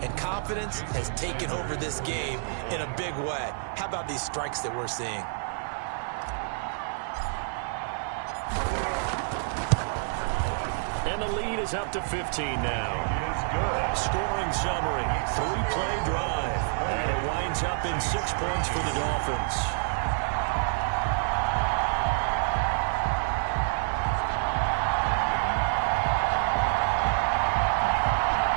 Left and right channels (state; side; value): silent; left; digital silence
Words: confidence has taken over this game in a big way. How about these strikes that we're seeing? And the lead is up to 15 now. Scoring summary, 3-play drive. And it winds up in 6 points for the Dolphins.